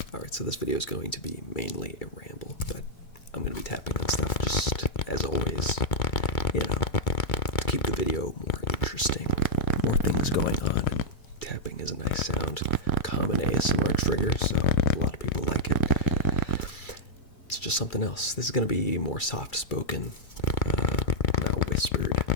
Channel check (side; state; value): right; late; 2.3 ms